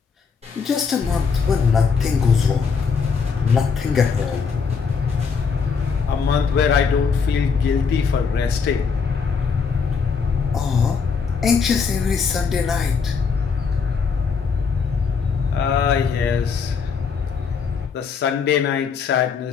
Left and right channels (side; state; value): right; quieter; 5.7 dB